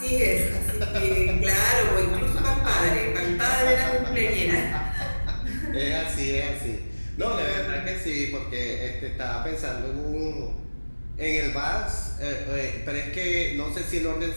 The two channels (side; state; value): both; inverted; correlation -1.00